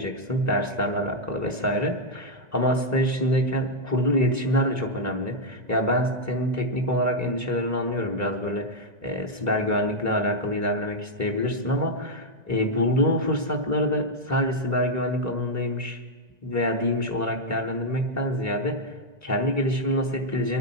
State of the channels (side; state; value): left; late; 1.9 ms